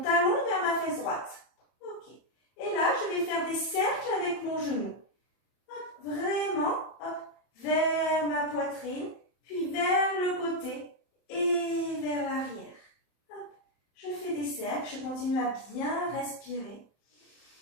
vers ma fesse droite. Ok. Et là, je vais faire des cercles avec mon genou. Hop, vraiment, hop, vers ma poitrine, puis vers le côté et vers l'arrière. Hop, je fais des cercles, je continue à bien respirer.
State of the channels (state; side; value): late; right; 31 ms